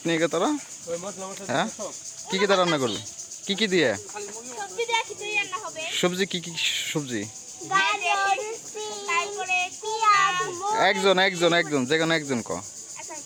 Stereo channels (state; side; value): identical; both; correlation 1.00